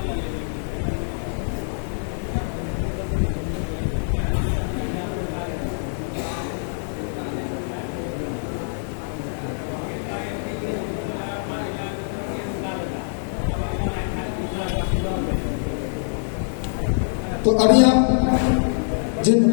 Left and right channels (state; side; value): silent; right; 62 dB below the other